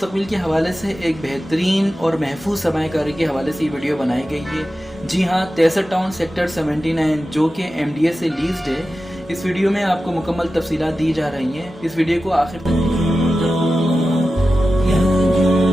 के हवाले से एक बेहतरीन और महफूज सरमायाकारी के हवाले से ये वीडियो बनाई गई है। जी हाँ, तेसर टाउन सेक्टर 79 जो कि MDA से लीज्ड है। इस वीडियो में आपको मुकम्मल तफसीलात दी जा रही हैं। इस वीडियो को आखिर तक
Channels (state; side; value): normal; both; correlation 0.93